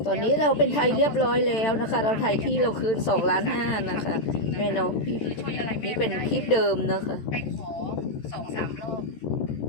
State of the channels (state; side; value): late; right; 14 ms